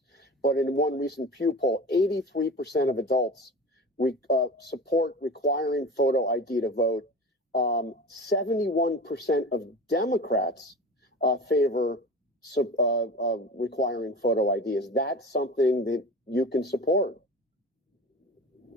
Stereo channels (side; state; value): both; normal; correlation 0.34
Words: but in one recent Pew poll, 83% of adults support requiring photo ID to vote. 71% of Democrats favor requiring photo ID. Is that something that you can support?